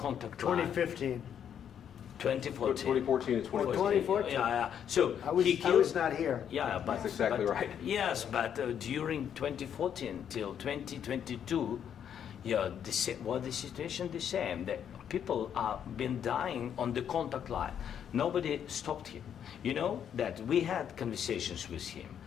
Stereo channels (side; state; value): right; quieter; 8.8 dB